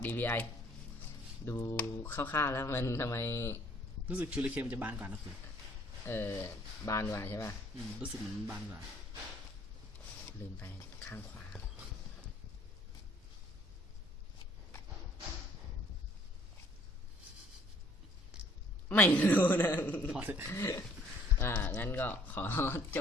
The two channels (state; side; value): normal; both; correlation 0.60